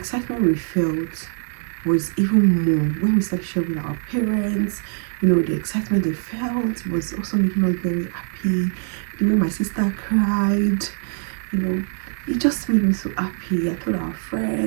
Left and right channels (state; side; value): silent; left; 64 dB below the other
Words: we felt was even more when we started sharing with our parents. You know, the excitement they felt was also making us very happy. The way my sister cried, you know, it just made me so happy. I told our